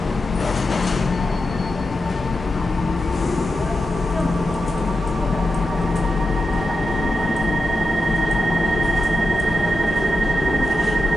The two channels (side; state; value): both; normal; correlation 0.89